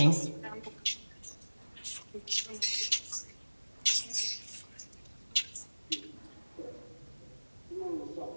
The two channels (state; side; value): inverted; both; correlation -1.00